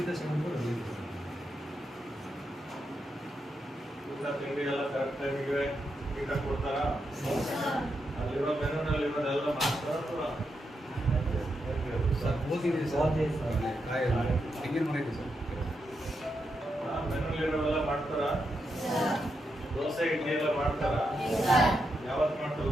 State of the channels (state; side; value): normal; both; correlation 0.84